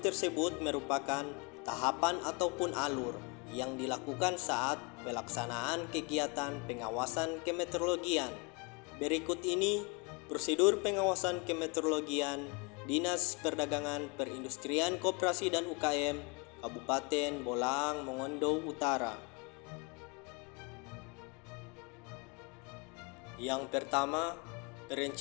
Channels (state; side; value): quieter; right; 30.3 dB